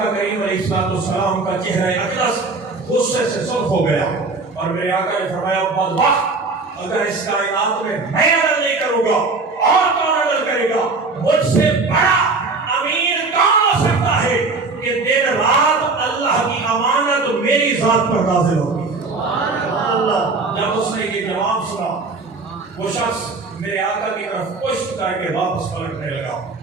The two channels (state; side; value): quieter; left; 3.9 dB